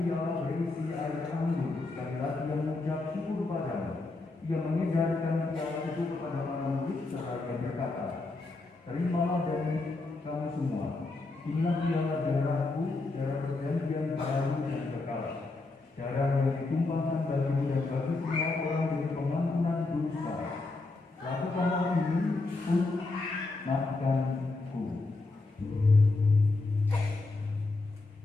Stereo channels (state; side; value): quieter; right; 3.4 dB